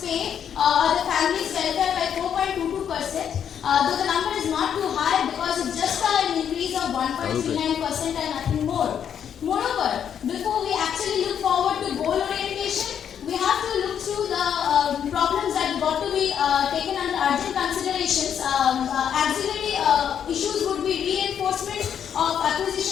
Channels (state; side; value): quieter; right; 8.6 dB